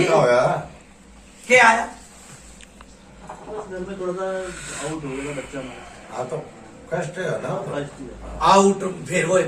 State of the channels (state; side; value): identical; both; correlation 1.00